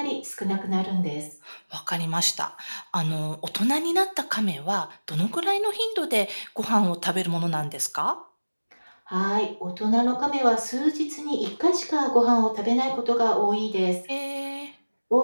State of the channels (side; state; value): both; inverted; correlation -1.00